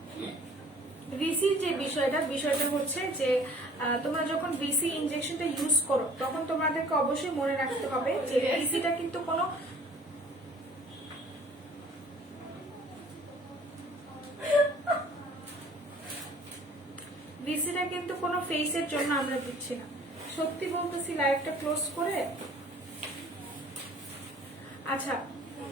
ভিসির যে বিষয়টা হচ্ছে যে তোমরা যখন ভিসি ইনজেকশনটা ইউজ করো তখন তোমাদেরকে অবশ্যই মনে রাখতে হবে যে ভিসিটা কিন্তু কোনো ফেসের জন্য আমরা দিচ্ছি না। সত্যি বলতেছি লাইভটা ক্লোজ করে। আচ্ছা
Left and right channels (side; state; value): both; normal; correlation 0.52